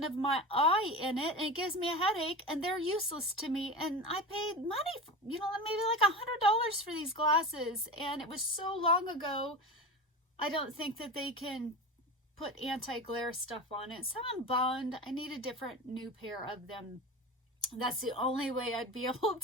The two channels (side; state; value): both; normal; correlation 0.28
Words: of my eye in it, and it gives me a headache, and they're useless to me. And I paid money, maybe like $100 for these glasses, and it was so long ago, I don't think that they can put anti-glare stuff on it. So I'm bummed. I need a different new pair of them. That's the only way I'd be able